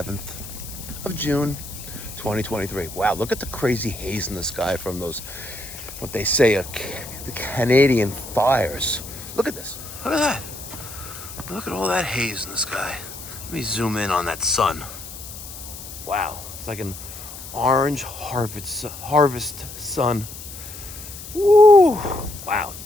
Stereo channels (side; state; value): left; noise; hiss, 12 dB below the sound